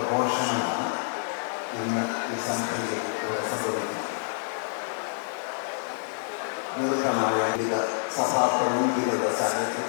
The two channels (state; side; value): silent; right; digital silence